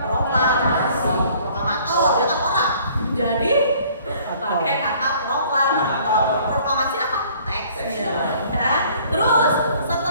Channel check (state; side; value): inverted; both; correlation -0.56